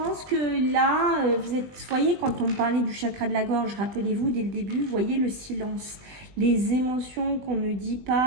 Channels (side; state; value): left; late; 20 ms